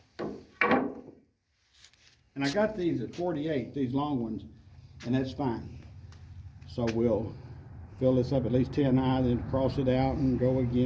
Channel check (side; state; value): both; identical; correlation 1.00